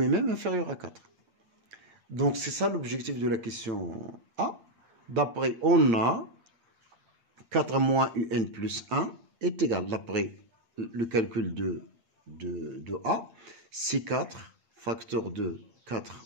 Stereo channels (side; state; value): left; late; 8.9 ms